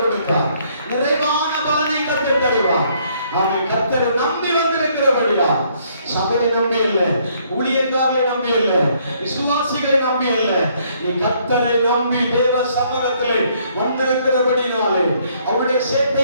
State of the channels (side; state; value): both; inverted; correlation -0.66